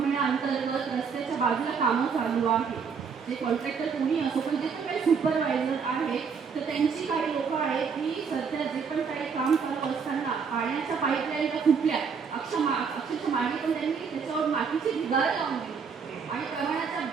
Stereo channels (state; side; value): quieter; left; 6.0 dB